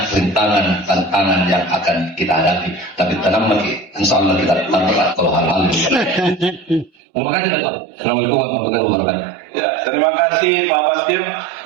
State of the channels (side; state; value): left; drops out; at 6.9 s